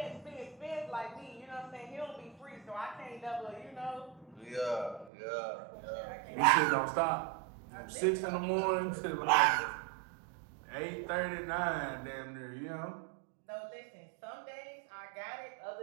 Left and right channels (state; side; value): drops out; left; at 5.1 s